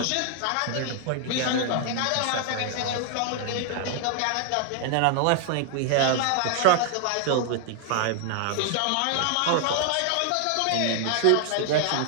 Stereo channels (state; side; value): different; both; correlation 0.00